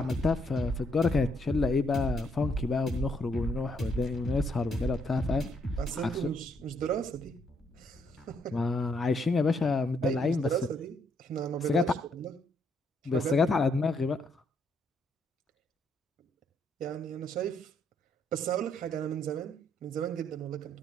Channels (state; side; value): normal; both; correlation 0.72